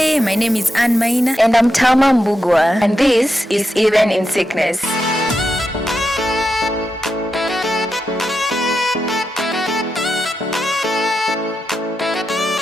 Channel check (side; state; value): both; normal; correlation 0.87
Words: my name is Undermining. And I'm Tama Mbugwa. And this is Even in Sickness.